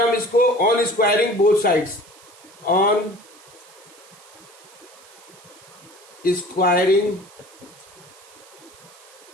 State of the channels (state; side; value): noise; right; hiss, 23 dB below the sound